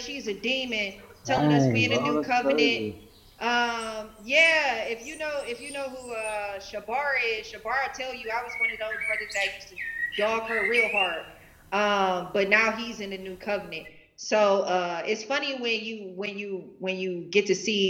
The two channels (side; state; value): both; identical; correlation 1.00